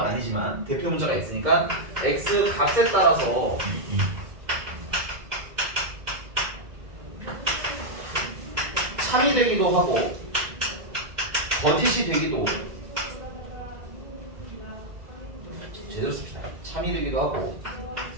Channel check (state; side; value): late; left; 2.0 ms